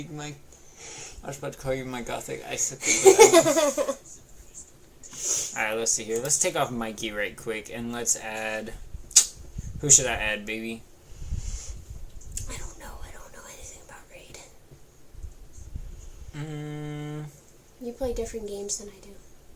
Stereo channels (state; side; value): identical; both; correlation 1.00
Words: Mike. I was about to call you my gothic icicle. Alright, let's see here. Let's take off Mikey right quick and let's add... Who should I add, baby? I don't know anything about Raid. You play different games than I do.